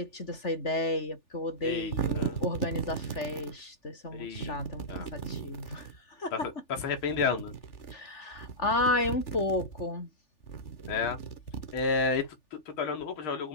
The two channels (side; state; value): right; late; 3.4 ms